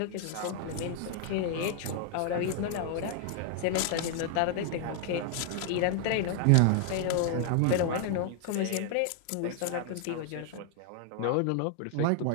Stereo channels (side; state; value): both; different; correlation 0.00